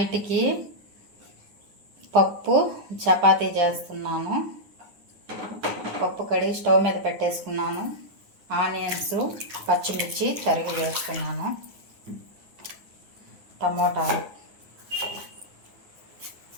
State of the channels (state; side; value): late; left; 9.6 ms